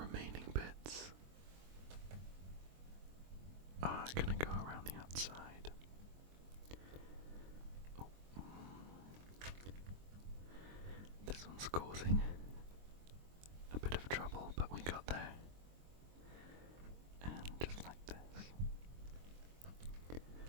bits are going to go around the outside. Oh. This one's causing a bit of trouble, but we got there. And just like this.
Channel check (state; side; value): late; left; 23 ms